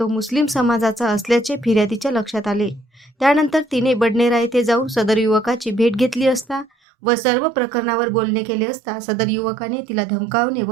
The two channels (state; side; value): drops out; left; at 6.7 s